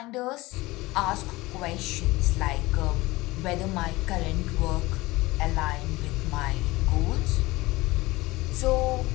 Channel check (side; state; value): right; quieter; 20.5 dB